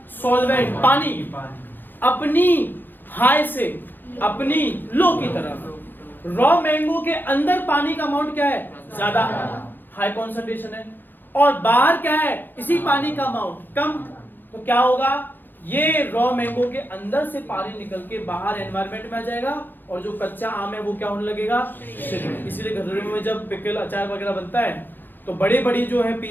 सॉल्वेंट, पानी अपनी हाई से अपनी लो की तरफ। रॉ मैंगो के अंदर पानी का अमाउंट क्या है? ज्यादा, हाई कॉन्सेंट्रेशन है, और बाहर क्या है? इसी पानी का अमाउंट कम। तो क्या होगा? ये रॉ मैंगो के अंदर से पानी निकल के बाहर एनवायरनमेंट में आ जाएगा, और जो कच्चा आम है वो क्या होने लगेगा? इसीलिए घरों में जब पिकल, अचार वगैरह बनता है तो बड़े बड़ी जो है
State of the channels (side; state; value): right; late; 0.092 ms